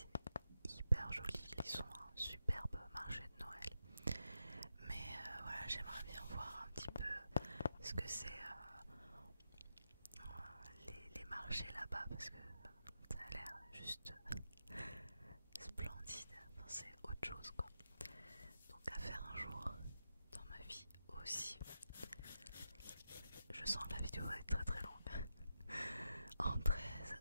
hyper joli, ils ont un superbe marché de Noël. Mais voilà, j'aimerais bien voir un petit peu ce que c'est les marchés là-bas, parce que ça a l'air juste splendide, enfin, c'est autre chose quoi. Donc à faire un jour dans ma vie aussi. Je sens que la vidéo va être très très longue. En 13,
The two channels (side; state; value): both; inverted; correlation -0.86